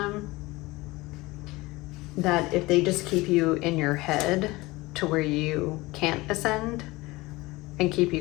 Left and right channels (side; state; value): right; quieter; 21.1 dB